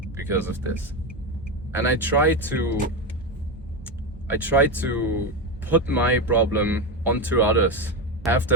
because of this. And I tried to put my problem onto others, have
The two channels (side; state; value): both; normal; correlation 0.13